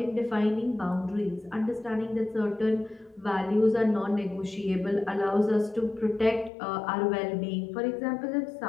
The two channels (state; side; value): drops out; right; at 6.5 s